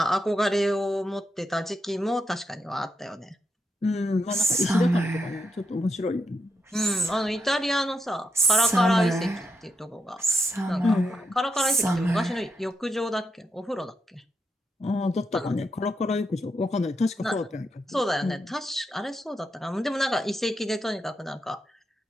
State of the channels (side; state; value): both; normal; correlation 0.82